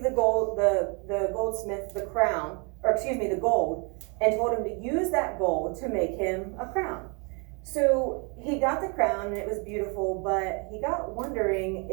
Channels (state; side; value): quieter; left; 33.2 dB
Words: the goldsmith the crown, or excuse me, the gold, and told him to use that gold to make him a crown. So he got the crown and it was beautiful, but he got wondering,